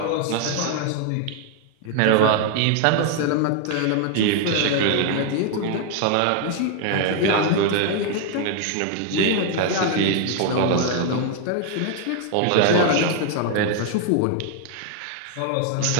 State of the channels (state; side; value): different; both; correlation 0.00